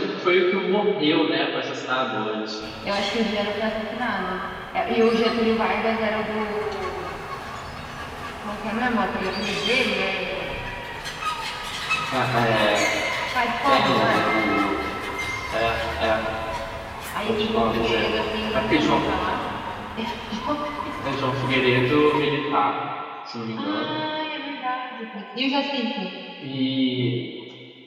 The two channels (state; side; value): identical; both; correlation 1.00